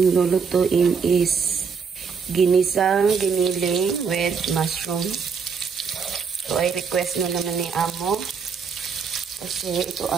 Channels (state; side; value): quieter; left; 5.9 dB